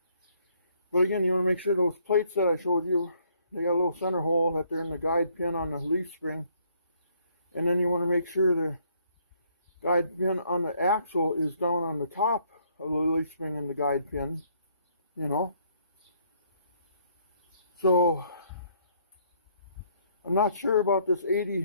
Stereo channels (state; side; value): inverted; both; correlation -0.67